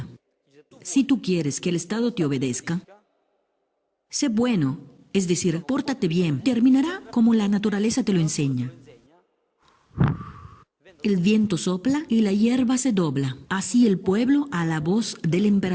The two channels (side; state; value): both; identical; correlation 1.00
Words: Si tú quieres que el Estado te obedezca, sé bueno, es decir, pórtate bien, terminará como la naturaleza te lo enseña. El viento sopla y la hierba se dobla, así el pueblo a la voz del